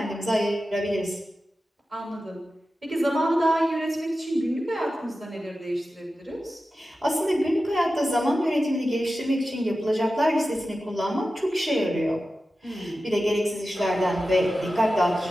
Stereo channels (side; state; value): both; normal; correlation 0.93